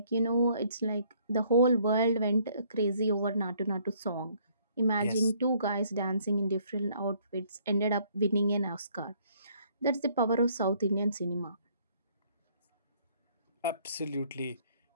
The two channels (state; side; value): inverted; both; correlation -0.64